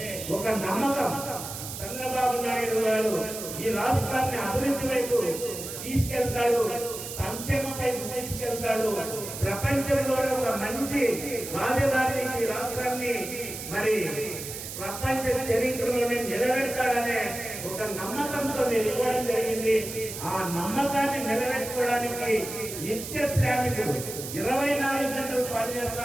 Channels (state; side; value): noise; right; hiss, 8 dB below the sound